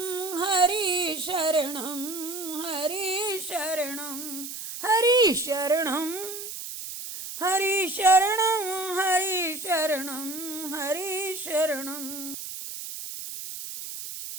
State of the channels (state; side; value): noise; right; hiss, 8 dB below the sound